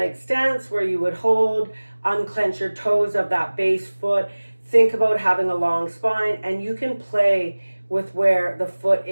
stance where you would hold, unclench your toes of that base foot. Think about having a long spine, and you can play with where the foot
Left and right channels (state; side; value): inverted; both; correlation -1.00